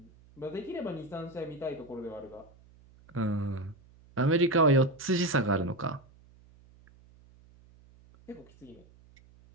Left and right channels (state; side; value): noise; right; hum, 26 dB below the sound